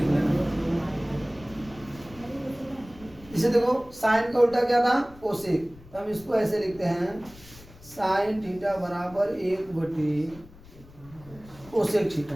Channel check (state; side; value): noise; left; rumble, 21 dB below the sound